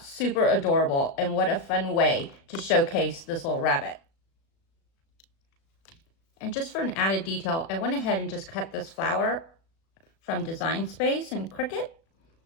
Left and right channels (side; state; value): right; late; 36 ms